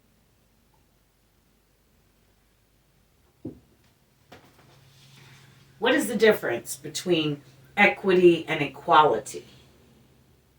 What is the difference between equity and equality?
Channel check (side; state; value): both; identical; correlation 1.00